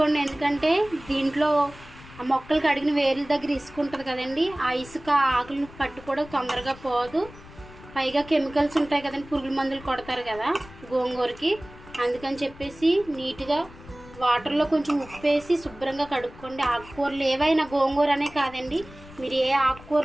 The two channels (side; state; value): left; noise; rumble, 19 dB below the sound